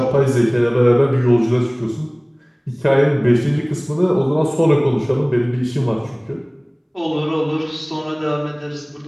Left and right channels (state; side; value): identical; both; correlation 1.00